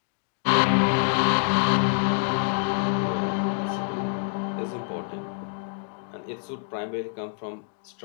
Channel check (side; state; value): right; silent; digital silence